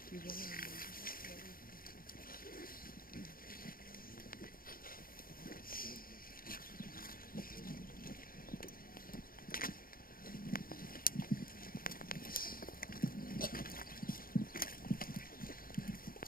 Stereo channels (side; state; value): right; late; 0.42 ms